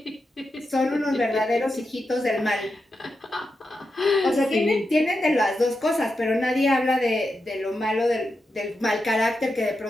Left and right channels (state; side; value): normal; both; correlation 0.88